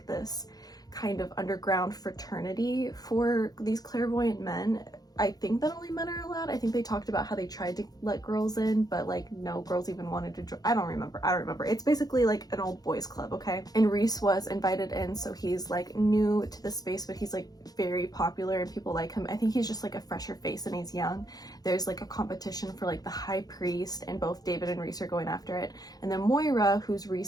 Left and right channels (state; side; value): late; right; 0.19 ms